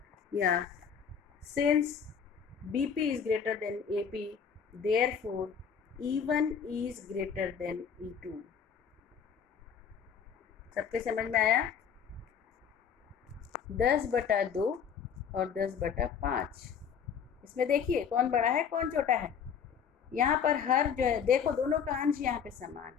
या since BP is greater than AP, therefore E1 is greater than E2. सबके समझ में आया? 10/2 और 10/5. इसमें देखिए कौन बड़ा है कौन छोटा है. यहाँ पर हर जो है, देखो दोनों का अंश यहाँ पे समान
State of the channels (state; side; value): quieter; right; 7.3 dB